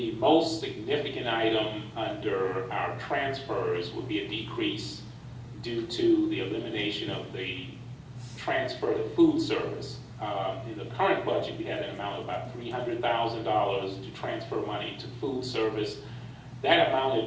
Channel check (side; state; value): both; identical; correlation 1.00